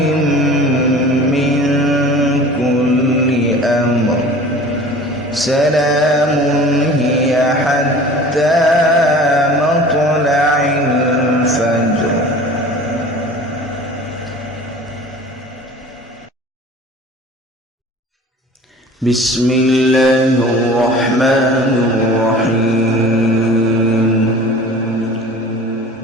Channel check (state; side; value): normal; both; correlation 0.42